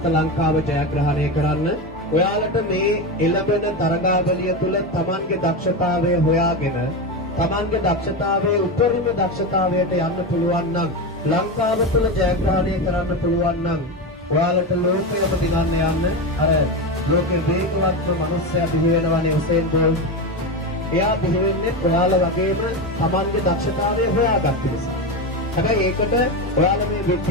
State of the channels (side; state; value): both; normal; correlation 0.17